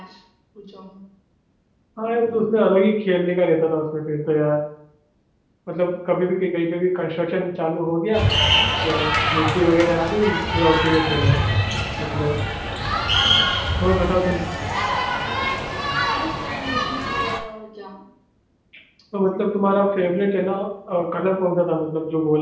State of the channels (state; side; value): identical; both; correlation 1.00